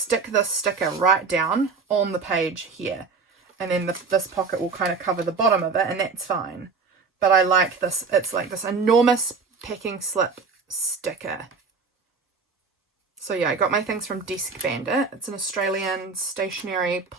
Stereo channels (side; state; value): left; quieter; 4.8 dB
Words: this sticker right down on the page here. And then this pocket will kind of cover the bottom of it, and that's fine. But I like this. It's like this enormous packing slip sticker. So yeah, I got my things from Desk Bandit. It's an Australian stationery